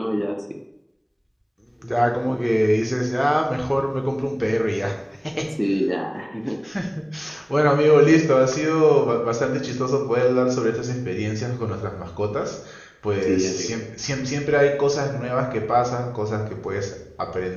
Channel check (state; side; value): identical; both; correlation 1.00